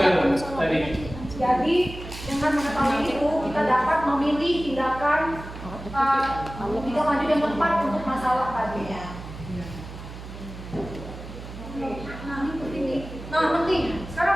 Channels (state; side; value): noise; right; hum, 12 dB below the sound